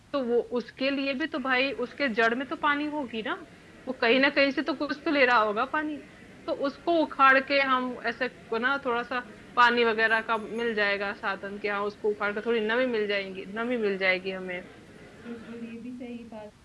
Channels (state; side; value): identical; both; correlation 1.00